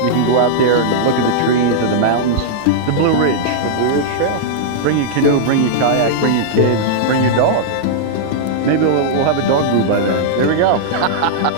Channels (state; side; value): different; both; correlation -0.02